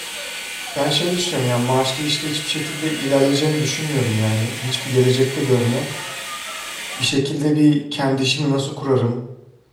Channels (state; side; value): identical; both; correlation 1.00